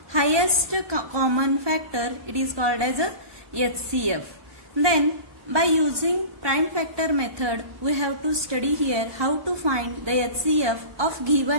highest common factor, it is called as a HCF. Then by using prime factor method, we have to study here how to find the HCF of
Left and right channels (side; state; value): left; late; 1.2 ms